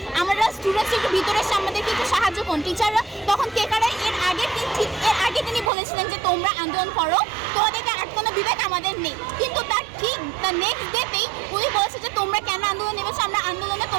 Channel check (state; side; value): drops out; left; at 5.7 s